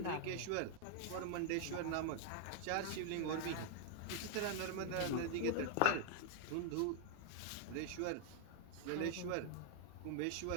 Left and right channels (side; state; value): both; different; correlation 0.00